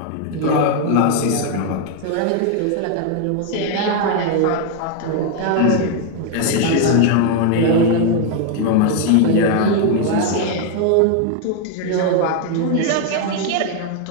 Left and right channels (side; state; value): both; different; correlation 0.01